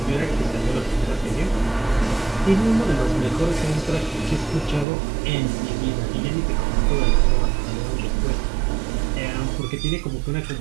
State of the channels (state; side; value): drops out; left; at 4.9 s